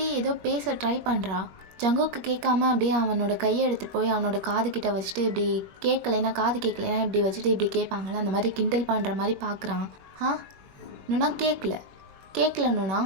ஏதோ பேச ட்ரை பண்ணுறா. ஜங்குக்கு கேட்காம அப்படியே அவனோட கையை எடுத்துகிட்டு போய் அவனோட காது கிட்ட வச்சுட்டு இப்படி காது கேட்கலைன்னா இப்படி வச்சுட்டு இப்படி கேட்பாங்களே, அந்த மாதிரி கிண்டல் பண்ணுற மாதிரி பார்க்குறான். நுணா கேட்கல நுணா,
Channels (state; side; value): late; left; 21 ms